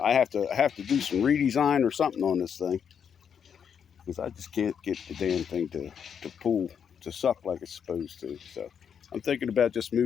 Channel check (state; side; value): quieter; right; 7.6 dB